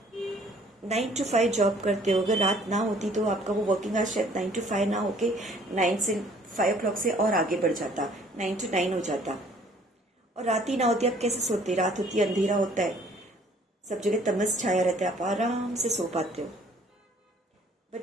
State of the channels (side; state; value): both; normal; correlation 0.57